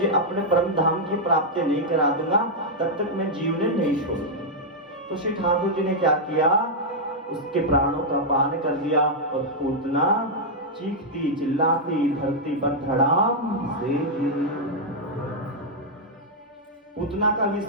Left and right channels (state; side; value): normal; both; correlation -0.04